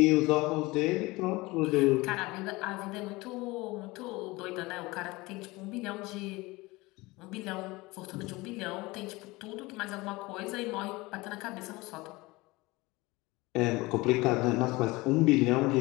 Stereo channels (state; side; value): quieter; right; 22.0 dB